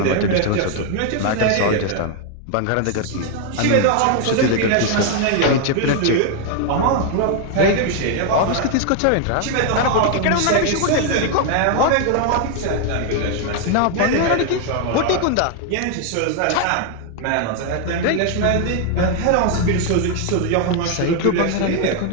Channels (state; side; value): different; both; correlation 0.00